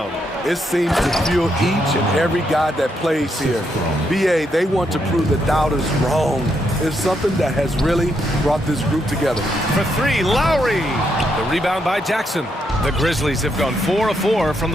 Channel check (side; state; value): both; normal; correlation 0.78